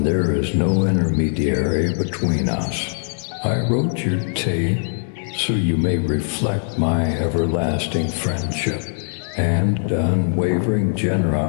there is no intermediary between us. I wrote your tale so you may reflect my everlasting friendship and unwavering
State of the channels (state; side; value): silent; right; 62 dB below the other